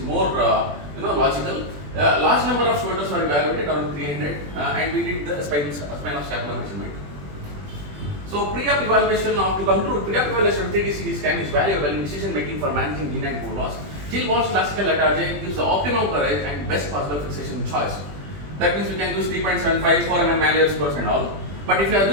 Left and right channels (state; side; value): late; left; 20 ms